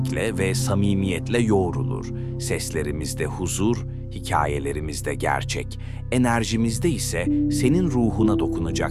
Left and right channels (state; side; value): identical; both; correlation 1.00